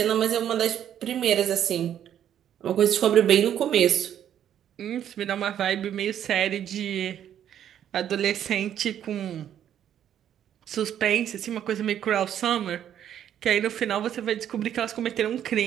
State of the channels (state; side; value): quieter; left; 10.1 dB